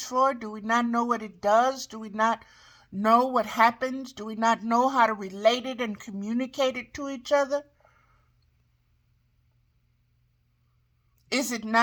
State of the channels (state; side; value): identical; both; correlation 1.00